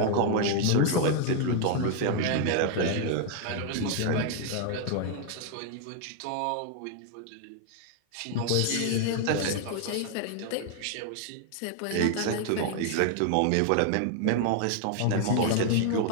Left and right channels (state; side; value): different; both; correlation 0.00